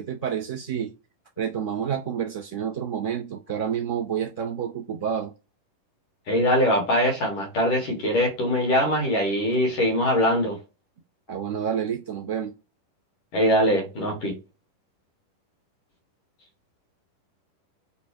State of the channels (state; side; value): late; right; 10 ms